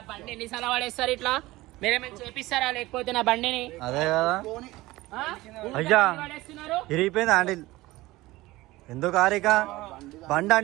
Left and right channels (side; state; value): left; quieter; 18.9 dB